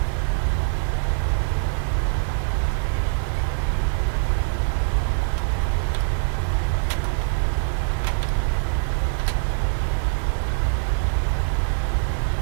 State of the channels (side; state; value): left; silent; digital silence